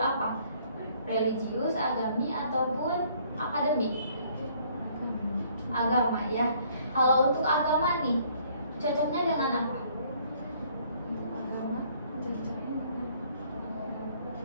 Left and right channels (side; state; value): both; inverted; correlation -0.62